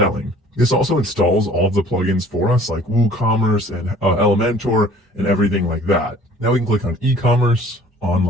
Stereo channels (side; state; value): both; normal; correlation 0.51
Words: This also installs all of the plugins for us, like WooCommerce and Elementor and everything like that. Now we can click on e-commerce,